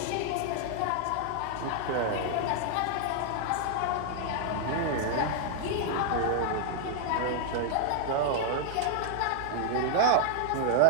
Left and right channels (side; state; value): both; different; correlation 0.00